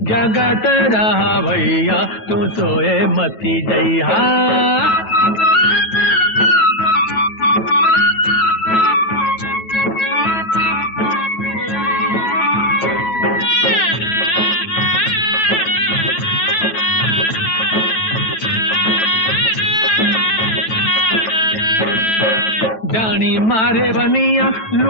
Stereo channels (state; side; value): late; right; 9.2 ms